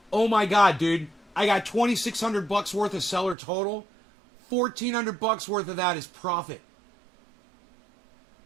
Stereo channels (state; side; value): drops out; left; at 3.4 s